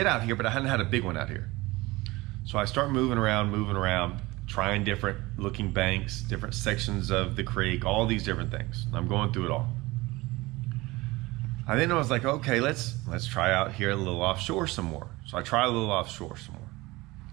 out here, but I hadn't had a big one out here. So I start moving around, trying different looking banks, different sections of the creek, all these different things. I'm going through it all. And then I was like, okay, let's try out here a little offshore some more. So I try a little offshore some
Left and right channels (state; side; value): quieter; left; 21.2 dB